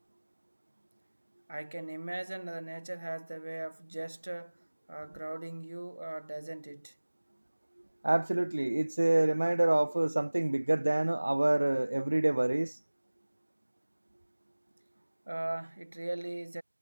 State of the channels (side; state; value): both; inverted; correlation -1.00